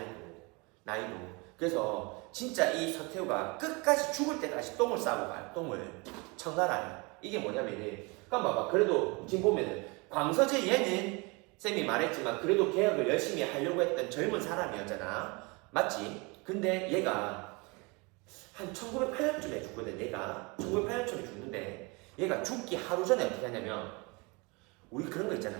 나이도. 그래서 진짜 이 서태후가 끝까지 죽을 때까지 똥을 싸고 가요. 똥을. 청나라에. 이게 뭐냐면은, 봐봐. 그래도 지금 보면은 광서제 얘는 쌤이 말했지만 그래도 개혁을 열심히 하려고 했던 젊은 사람이었잖아. 맞지? 근데 얘가 한 1908년쯤에 죽거든. 얘가 1908년쯤에 죽는데 얘가 죽기 하루 전에 어떻게 하냐면 우리 그런 거 있잖아.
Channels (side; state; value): left; quieter; 28.1 dB